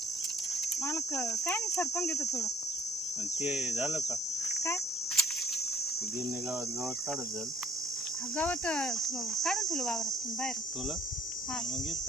मालक काय नाही सरपण घेतो थोडं ते झालं का काय गिरणे गावात काढत झालं गवत काढून ठेवलं वावरातून बाहेर तुला हा मग येत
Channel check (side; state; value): both; normal; correlation 0.59